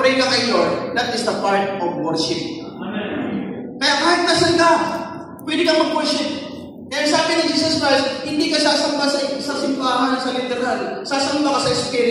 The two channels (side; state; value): both; identical; correlation 1.00